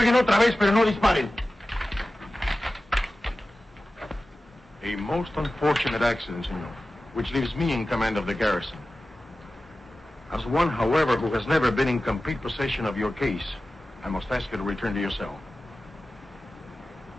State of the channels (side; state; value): both; normal; correlation 0.95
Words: otra vez, pero no disparen. A most unfortunate accident, senor, which leaves me in command of the garrison. As one, however, who has never been in complete possession of your case, I must ask you to return to your cell.